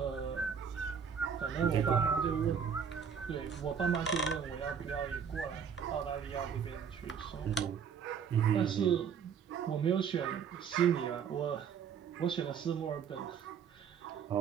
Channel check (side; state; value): left; quieter; 7.2 dB